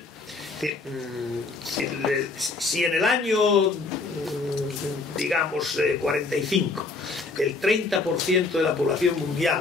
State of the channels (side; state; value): right; quieter; 3.8 dB